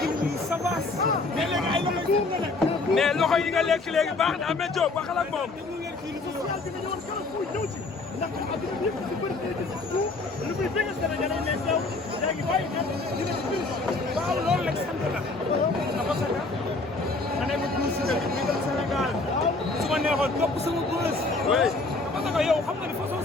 yu sabaas mais léegi ay loxo yu nga nekk mais loxo yi nga lekk léegi baax na Ameth Diop waxal ak moom. ndax adduna bi yëpp si bëri day gis tout lu muy bëgg Sénégal yi mais teew yaa ngi bàyyi ñoom dina ci biir waaw loolu rek sant la parce que ma nekk pour Siteu bi bëggal Sénégal su ma neexoon topp sama bës parce que yow xam nga ne façon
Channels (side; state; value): right; quieter; 3.4 dB